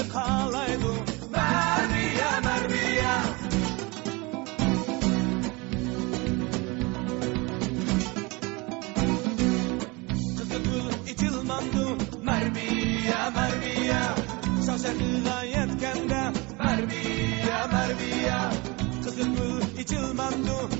kalaydu Marbiya, Marbiya İtilmandu Marbiya, Marbiya Şaşakığa yetkende Marbiya, Marbiya Kızıl gül içilmandu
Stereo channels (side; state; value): left; quieter; 26.0 dB